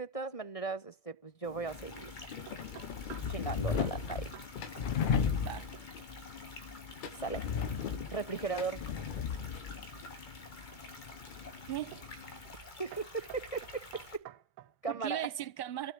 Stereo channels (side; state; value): right; late; 2.2 ms